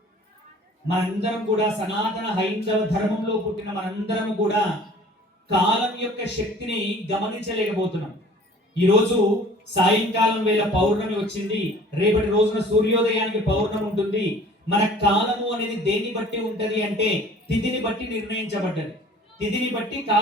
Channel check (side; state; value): both; normal; correlation 0.49